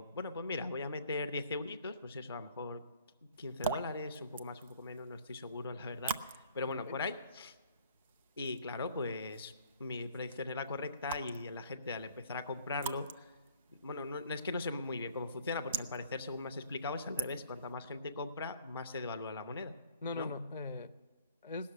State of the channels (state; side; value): inverted; both; correlation -0.57